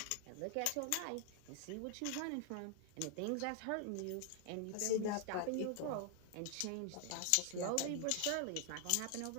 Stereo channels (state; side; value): different; both; correlation 0.00